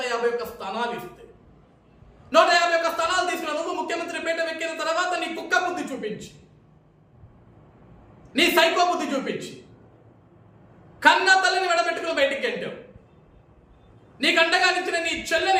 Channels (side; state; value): both; identical; correlation 1.00